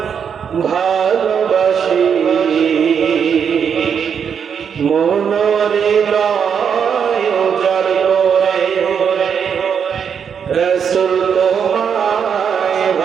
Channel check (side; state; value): left; quieter; 7.3 dB